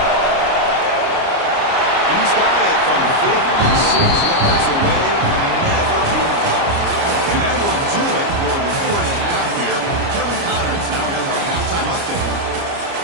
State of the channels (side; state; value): left; late; 29 ms